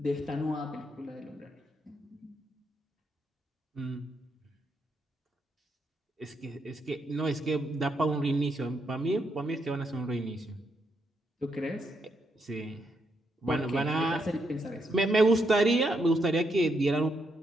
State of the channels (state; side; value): normal; both; correlation 0.79